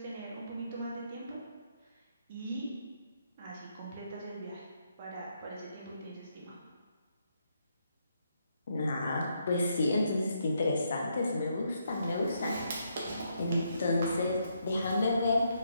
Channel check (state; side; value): inverted; both; correlation -0.77